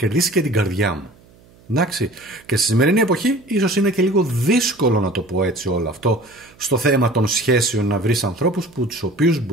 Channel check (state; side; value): noise; right; hum, 28 dB below the sound